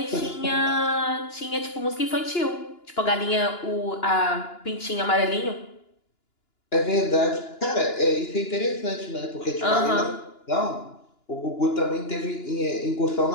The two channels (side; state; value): right; late; 2.9 ms